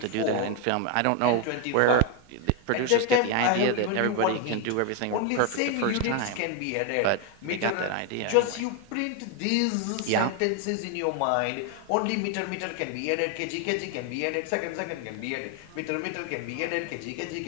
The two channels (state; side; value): different; both; correlation 0.01